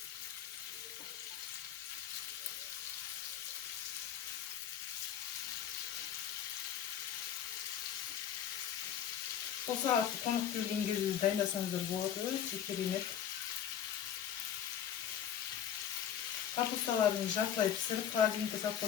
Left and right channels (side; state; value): right; quieter; 9.4 dB